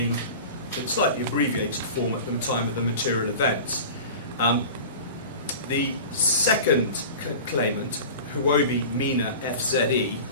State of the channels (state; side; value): inverted; both; correlation -0.36